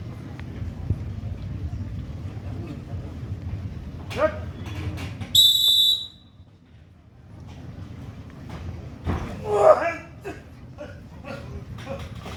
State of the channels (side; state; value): both; identical; correlation 1.00